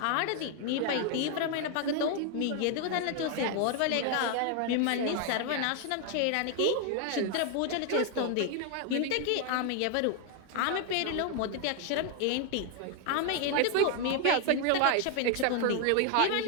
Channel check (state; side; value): different; both; correlation 0.00